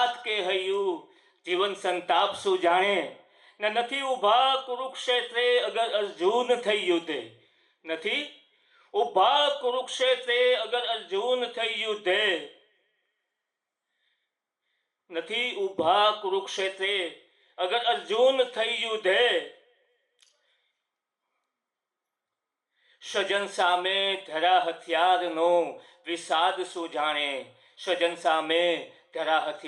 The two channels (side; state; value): both; identical; correlation 1.00